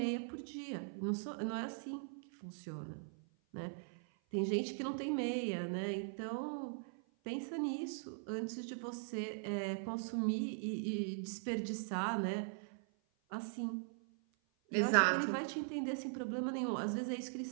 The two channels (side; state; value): left; silent; 51 dB below the other